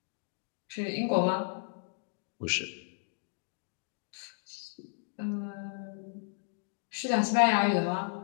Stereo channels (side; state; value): right; silent; digital silence